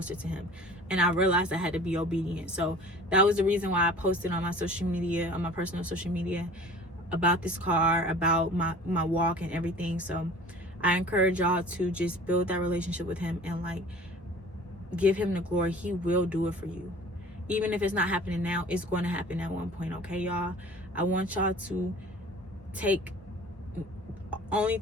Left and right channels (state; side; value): normal; both; correlation 0.44